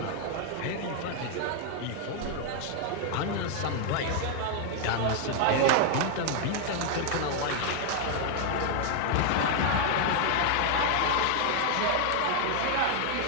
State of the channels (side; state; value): both; different; correlation 0.00